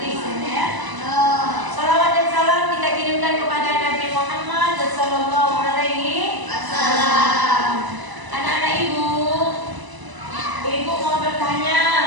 ya. Salawat dan salam kita kirimkan kepada Nabi Muhammad sallallahu alaihi wasallam. Anak-anak ibu mau bertanya,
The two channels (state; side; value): late; left; 1.0 ms